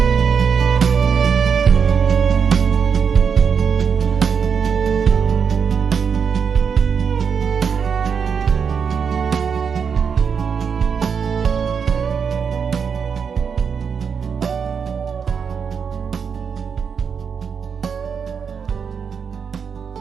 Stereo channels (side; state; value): left; quieter; 6.5 dB